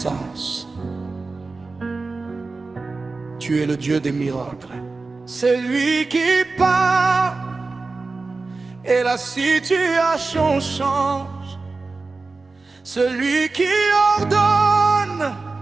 Tu es le Dieu des miracles. C'est lui qui parle et la situation change. Celui qui ordonne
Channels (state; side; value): quieter; left; 3.8 dB